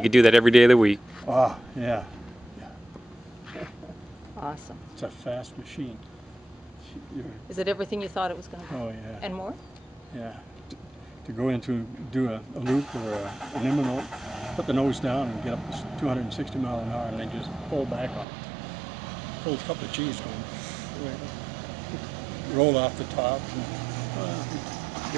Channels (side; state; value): left; drops out; at 18.2 s